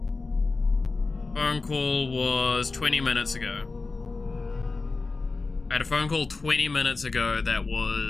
Phone call was 20 minutes ago. I had a phone call 20 minutes ago that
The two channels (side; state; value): right; quieter; 3.9 dB